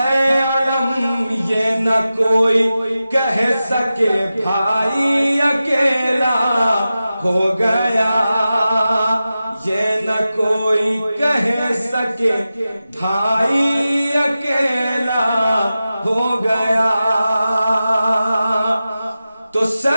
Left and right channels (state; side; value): inverted; both; correlation -0.93